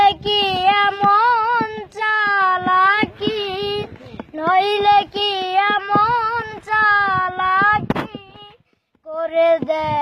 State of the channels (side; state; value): both; identical; correlation 1.00